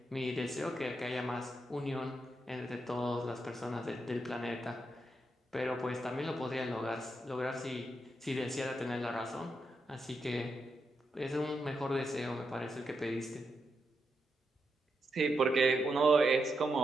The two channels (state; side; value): normal; both; correlation 0.83